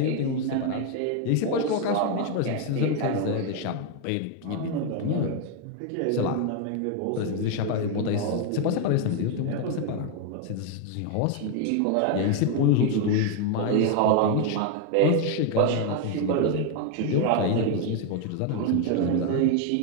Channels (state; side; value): different; both; correlation 0.01